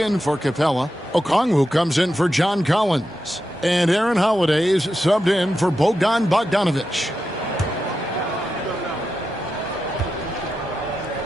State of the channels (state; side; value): normal; both; correlation 0.89